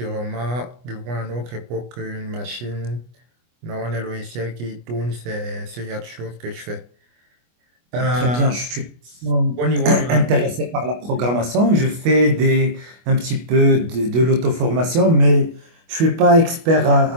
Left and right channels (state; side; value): late; left; 25 ms